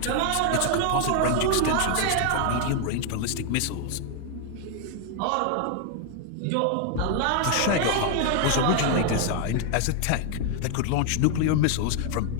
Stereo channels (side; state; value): both; different; correlation 0.00